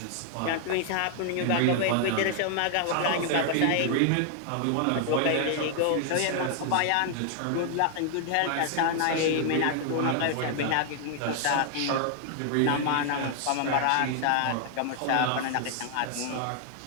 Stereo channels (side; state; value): both; different; correlation 0.00